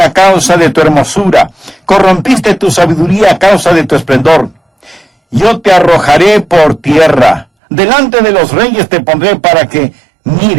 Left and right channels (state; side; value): drops out; left; at 7.5 s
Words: a causa de tu hermosura, corrompiste tu sabiduría a causa de tu esplendor. Yo te arrojaré por tierra, delante de los reyes te pondré para que